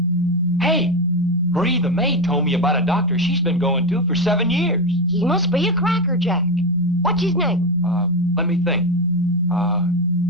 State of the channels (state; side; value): normal; both; correlation 0.13